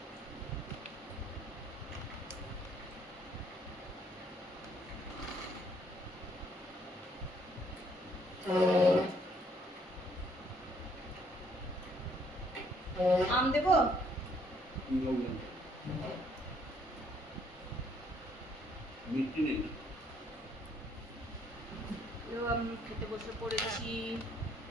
আম দেবো। মিষ্টি নেই, আমি খেতে বসে পড়েছি।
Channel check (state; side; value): normal; both; correlation 0.66